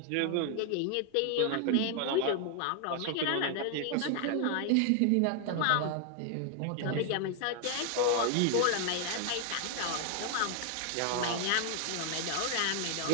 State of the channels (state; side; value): different; both; correlation 0.00